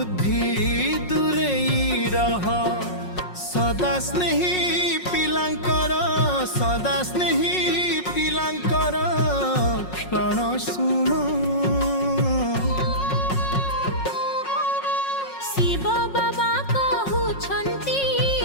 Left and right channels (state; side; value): late; right; 5.5 ms